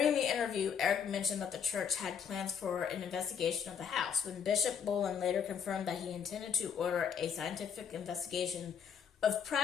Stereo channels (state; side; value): quieter; right; 7.4 dB